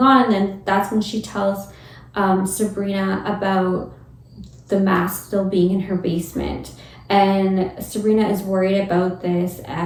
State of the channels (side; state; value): both; identical; correlation 1.00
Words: on? And then that's when she tells Sabrina about the mask still being in her basement. And Sabrina is worried about this,